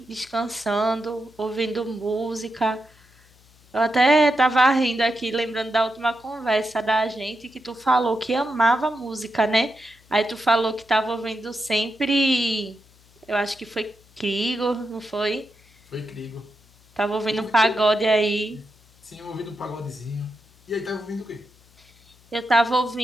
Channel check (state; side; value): noise; left; hum, 29 dB below the sound